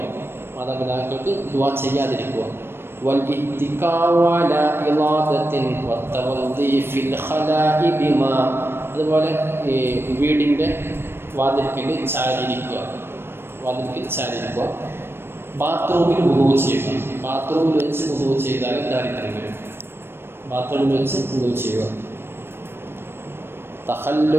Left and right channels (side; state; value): left; late; 0.11 ms